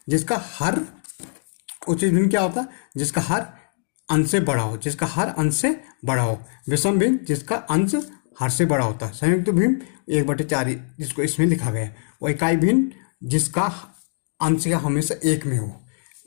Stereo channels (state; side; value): silent; right; digital silence